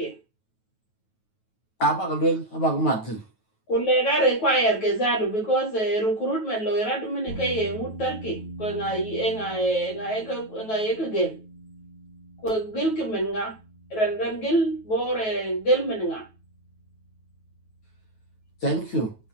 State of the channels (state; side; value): late; right; 9.2 ms